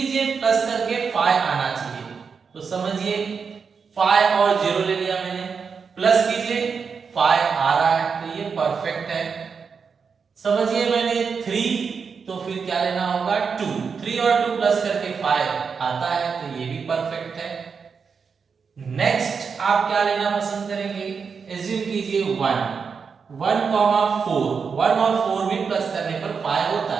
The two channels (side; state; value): left; quieter; 5.7 dB